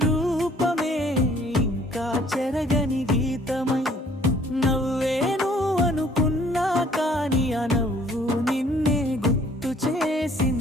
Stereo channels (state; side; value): normal; both; correlation 0.59